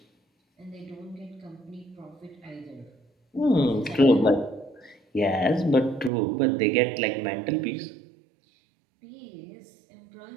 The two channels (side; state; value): left; drops out; at 6.1 s